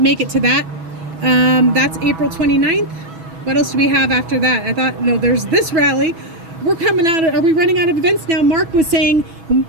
it to that. That's April 29th. What else do we have after that? I thought, no, there's this rally. We're coming out of, are we running out of events now? Mark was saying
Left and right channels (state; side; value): late; left; 6.1 ms